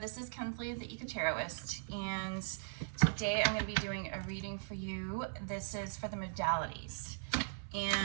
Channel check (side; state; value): left; silent; 52 dB below the other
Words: This is Kensley, the Eco Tarotist, and today I'm going to be doing a reading for you. This is for the modalities,